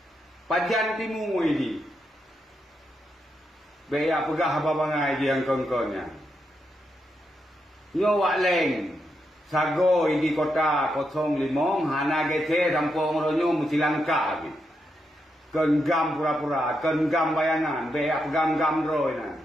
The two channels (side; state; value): both; normal; correlation 0.83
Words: Pajan timu ini. Baya pegah babangai dia yang kongkonya. Nyo wak leng sago di kota 05 hana gete kampung ronyo mesti langka bi. Kenggam pura-pura, kenggam bayangan, baya pegam-gam roy na.